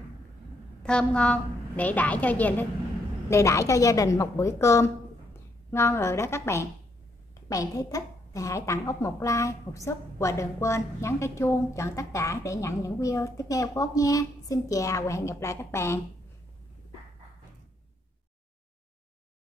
thơm ngon để đãi cho gia đình một bữa cơm ngon rồi đó các bạn. Các bạn thấy thích thì hãy tặng Út một like, một sub và đừng quên nhấn cái chuông chọn tất cả để nhận những video tiếp theo của Út nha. Xin chào và hẹn gặp lại các bạn.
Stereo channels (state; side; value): normal; both; correlation 0.74